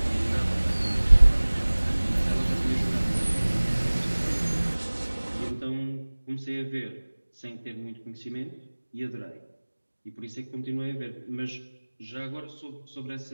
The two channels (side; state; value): both; inverted; correlation -1.00